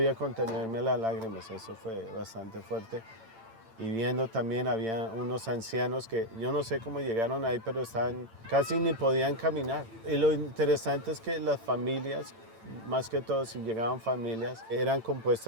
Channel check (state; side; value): late; left; 8.9 ms